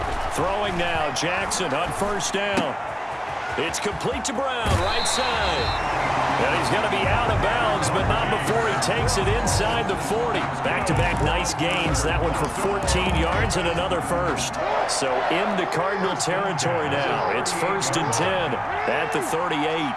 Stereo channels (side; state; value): both; identical; correlation 1.00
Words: Throwing now, Jackson on first down. It's complete to Brown, right side. And he's going to be out of bounds, but not before he takes it inside the 40. Back-to-back nice gains. That one for 14 yards and another first. So into Cardinal territory now. It's first and 10 at the 38.